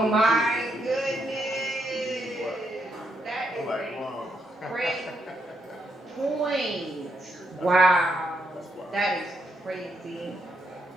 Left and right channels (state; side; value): normal; both; correlation 0.79